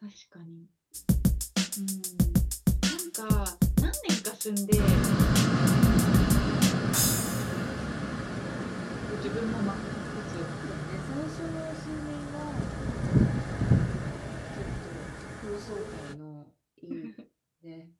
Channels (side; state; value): both; identical; correlation 1.00